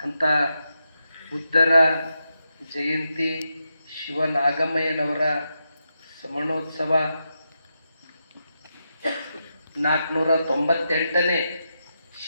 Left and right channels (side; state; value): both; inverted; correlation -0.86